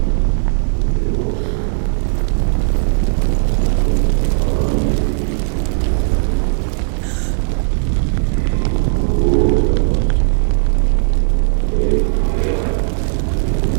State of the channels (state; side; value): silent; left; digital silence